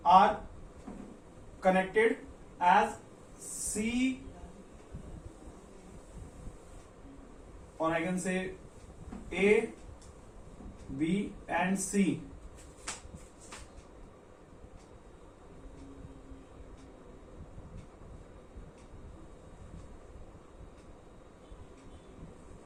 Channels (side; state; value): both; identical; correlation 1.00